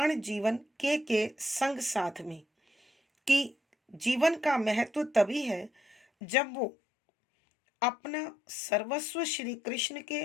जीवन के संग साथ में, कि जीवन का महत्व तभी है जब वो अपना सर्वस्व श्री कृष्ण के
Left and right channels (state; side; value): drops out; right; at 6.1 s